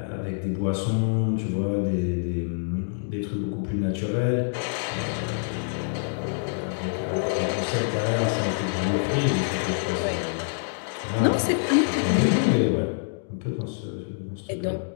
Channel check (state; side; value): silent; right; digital silence